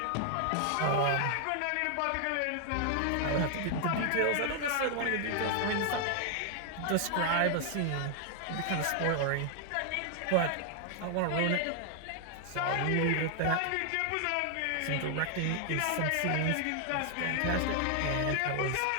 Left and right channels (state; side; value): different; both; correlation 0.00